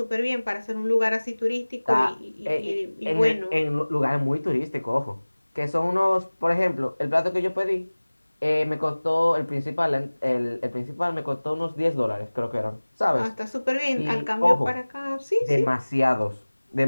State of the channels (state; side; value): inverted; both; correlation -1.00